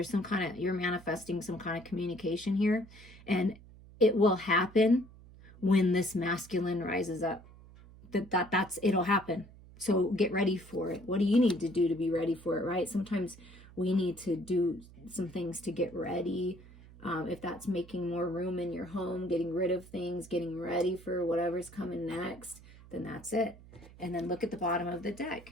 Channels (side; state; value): right; noise; hum, 20 dB below the sound